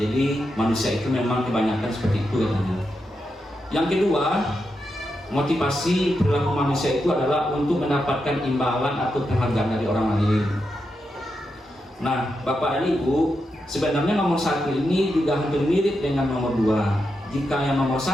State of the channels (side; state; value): both; normal; correlation 0.86